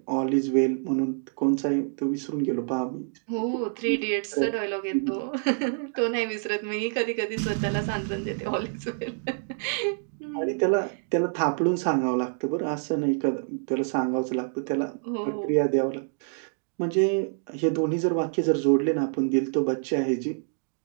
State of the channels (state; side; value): silent; left; digital silence